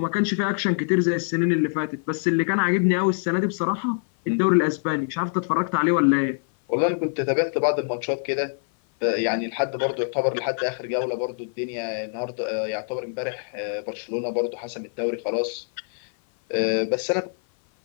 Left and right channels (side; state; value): right; silent; 56 dB below the other